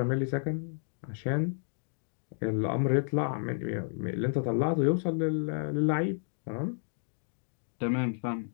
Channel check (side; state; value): right; silent; digital silence